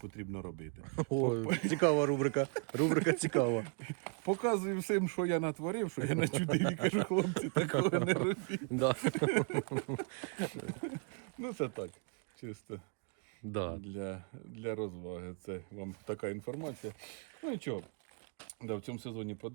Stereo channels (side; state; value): left; quieter; 37.2 dB